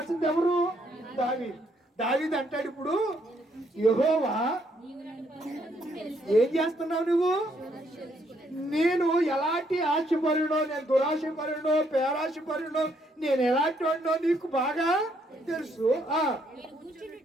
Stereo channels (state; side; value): normal; both; correlation 0.71